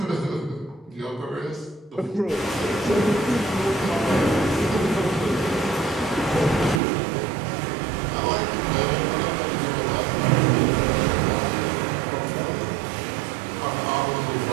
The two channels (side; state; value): left; drops out; at 6.8 s